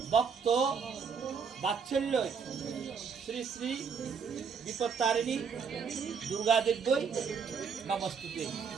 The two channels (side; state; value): left; quieter; 6.1 dB